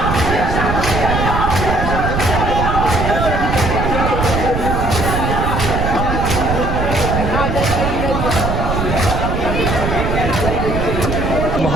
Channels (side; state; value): right; noise; rumble, 1 dB below the sound